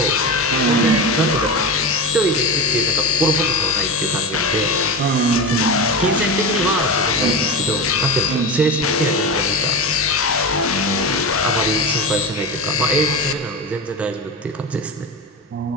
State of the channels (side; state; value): both; normal; correlation 0.23